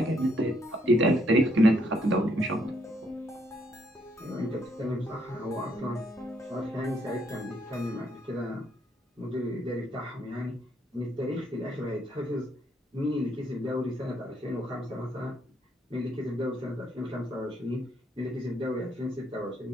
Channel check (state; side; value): normal; both; correlation 0.72